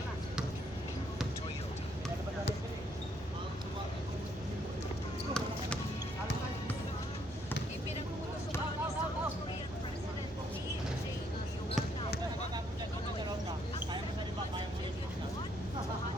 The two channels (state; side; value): normal; both; correlation 0.70